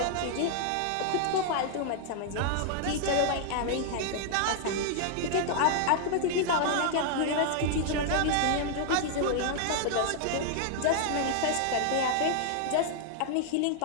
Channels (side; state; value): both; different; correlation -0.01